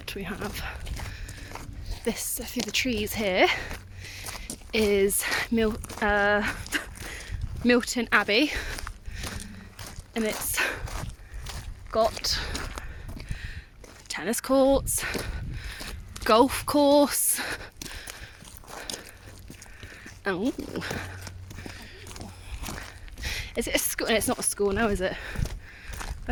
We have this through the trees here is Milton Abbey, and it's got tennis courts, golf course. Oh, is it a school? It's not a school now, is it?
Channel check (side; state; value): both; identical; correlation 1.00